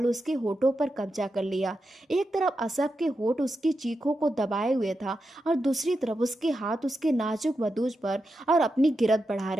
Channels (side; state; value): both; normal; correlation 0.88